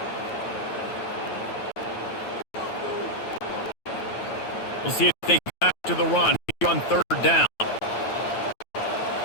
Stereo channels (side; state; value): right; late; 9.1 ms